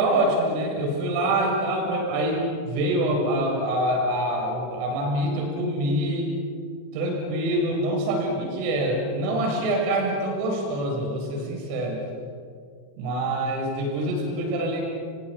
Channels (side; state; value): left; late; 36 ms